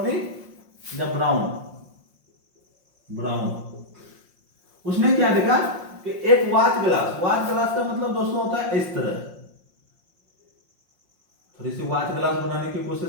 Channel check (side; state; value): left; late; 5.6 ms